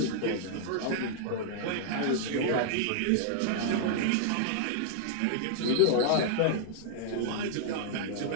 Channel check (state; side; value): different; both; correlation -0.01